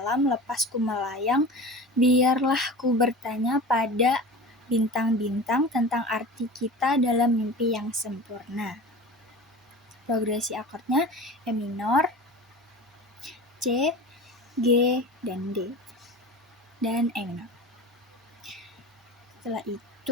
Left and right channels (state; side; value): normal; both; correlation 0.35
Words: lepas ku melayang, biarlah ku bertanya pada bintang-bintang tentang arti kita dalam mimpi yang sempurna. Progresi akordnya E minor, C, G, dan D, dan E minor. Setelah